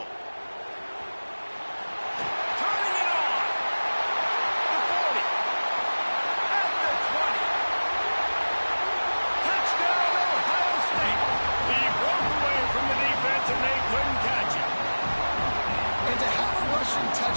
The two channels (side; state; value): both; inverted; correlation -1.00